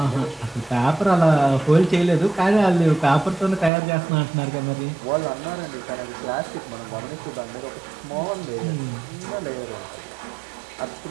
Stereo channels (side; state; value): left; drops out; at 3.7 s